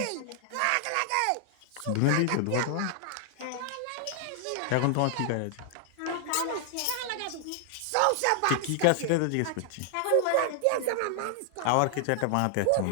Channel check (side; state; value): both; different; correlation 0.00